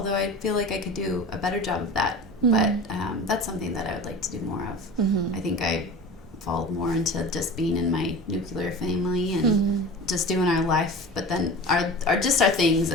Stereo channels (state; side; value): normal; both; correlation 0.35